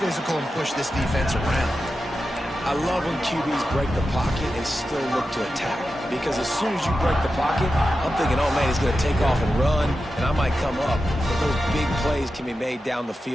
physical, and push this defense around. I love when QBs break the pocket and still look to attack. Because as soon as you break the pocket, I'm thinking, oh man, he's going to take off and run, and I might come up. But those big plays can be made down the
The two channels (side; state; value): both; normal; correlation 0.91